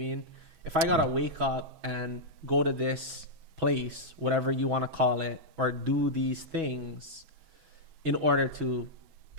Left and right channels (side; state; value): left; late; 6.1 ms